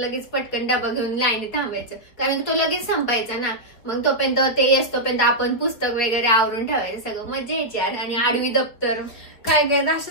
पटकन डबा घेऊन लाईनी थांबायचं कारण की तो लगेच संपायचा ना. मग तोपर्यंत ते येस तोपर्यंत आपण पुस्तक वगैरे आवरून ठेवायचं. सगळं मजा यायची आणि आडवी दप्तर काय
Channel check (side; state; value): right; late; 4.9 ms